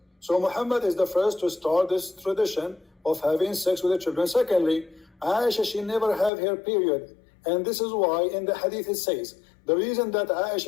So Muhammad is the first to start this tradition of having sex with the children. Secondly, Aisha, she never have her period. And this is why in the hadith it says, the reason that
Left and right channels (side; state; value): right; drops out; at 6.3 s